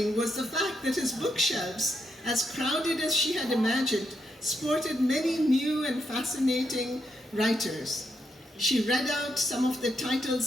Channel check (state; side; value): normal; both; correlation 0.80